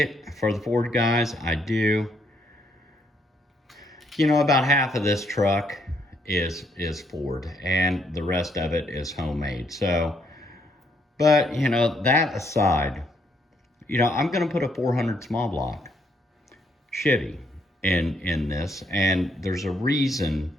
for the Ford guys, I do. You know, about half of this truck is Ford, and the rest of it is homemade. So, but you know, that aside, I'm going to put a 400 small block Chevy in this, and there's a reason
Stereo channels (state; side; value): normal; both; correlation 0.72